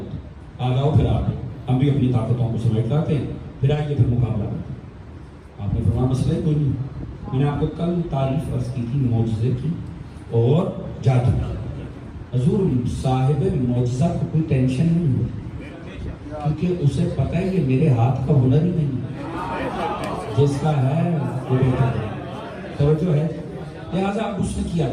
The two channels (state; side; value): identical; both; correlation 1.00